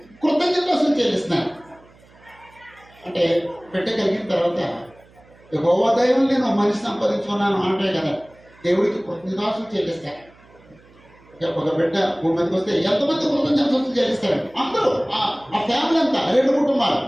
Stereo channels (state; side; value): noise; right; hum, 27 dB below the sound